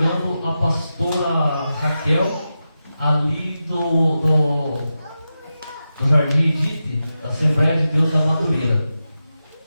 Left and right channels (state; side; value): inverted; both; correlation -0.91